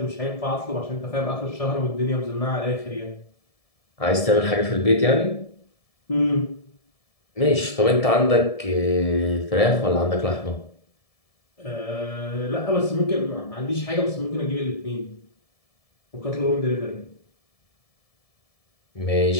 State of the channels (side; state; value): right; late; 1.7 ms